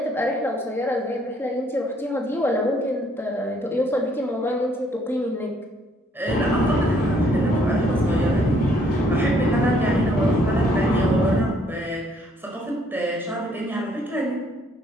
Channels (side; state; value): both; normal; correlation 0.66